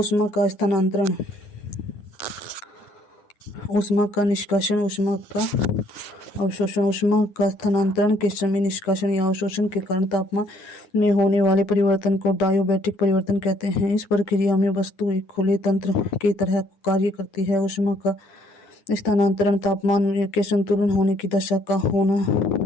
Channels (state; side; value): late; right; 9.7 ms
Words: का स्थानांतरण, ऊष्मा का निष्कासन, ऊष्मा का अवशोषण। ऊष्मा का स्थानांतरण के समय निष्कासन या अवशोषण के कारण तापमान में होने वाले परिवर्तन को डायोबैटिक परिवर्तन कहते हैं। इस प्रक्रिया में वस्तु एक खुले तंत्र की तरह कार्य करती है। ऊष्मा का स्थानांतरण तापमान के संतुलन होने की